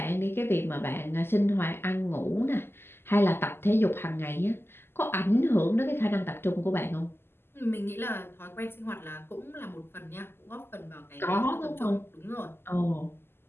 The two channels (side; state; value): right; late; 0.11 ms